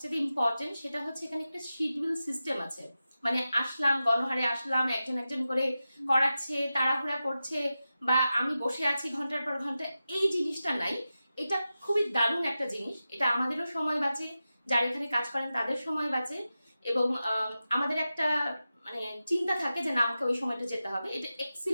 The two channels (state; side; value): inverted; both; correlation -0.93